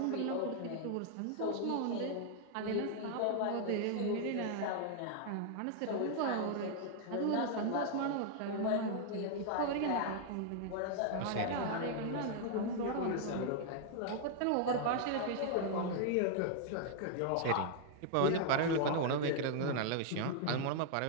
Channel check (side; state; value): both; different; correlation 0.00